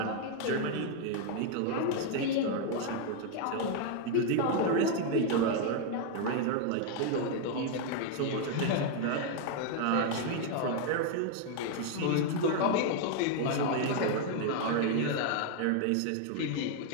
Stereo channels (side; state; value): both; different; correlation 0.00